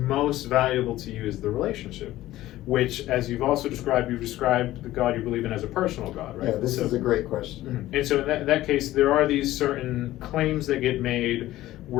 valuable to you is the relationship, which, as you've described the God you believe in as a personal God, right? Yeah, this is a great question. And so in that case, there are these certain claims that get made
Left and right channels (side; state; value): right; quieter; 15.4 dB